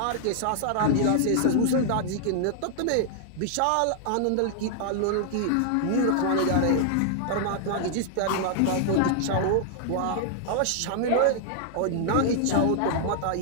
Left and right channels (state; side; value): different; both; correlation -0.01